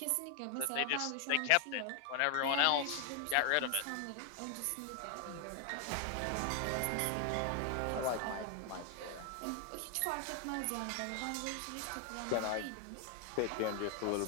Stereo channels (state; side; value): different; both; correlation 0.00